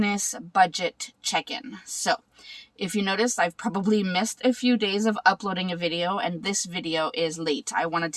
budget check-in. So, if you notice, I've probably missed a few days of uploading a video and this video is late. I wanted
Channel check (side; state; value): both; identical; correlation 1.00